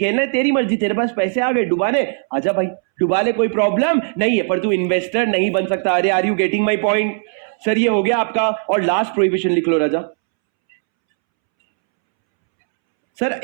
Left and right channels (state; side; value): silent; left; 67 dB below the other